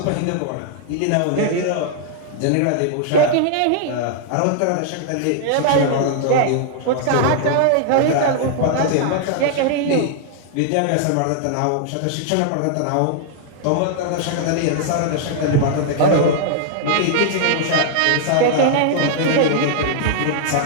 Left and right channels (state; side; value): different; both; correlation -0.01